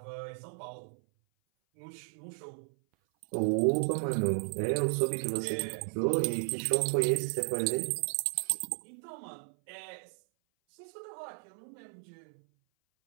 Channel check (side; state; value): left; silent; 55 dB below the other